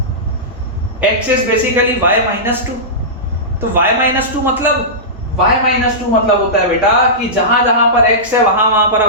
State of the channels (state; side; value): normal; both; correlation -0.17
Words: x is basically y minus 2। तो y माइनस 2 मतलब होता है बेटा कि जहां जहां पर x है वहां वहां पर